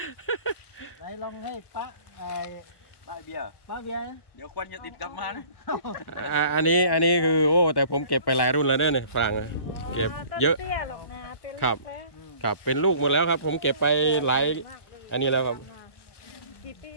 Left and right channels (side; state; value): right; late; 1.1 ms